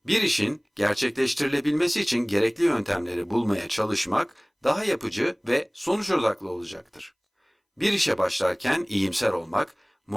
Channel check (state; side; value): identical; both; correlation 1.00